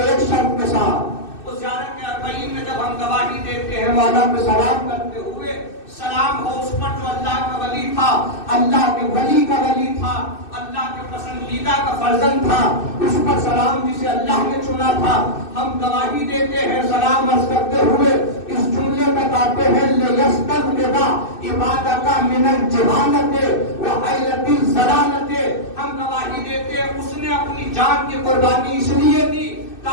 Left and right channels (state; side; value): late; right; 2.6 ms